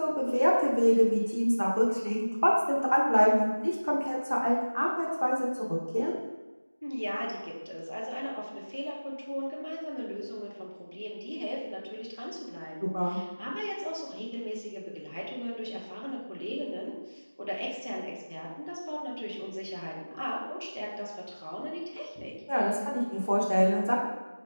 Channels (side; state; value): both; inverted; correlation -1.00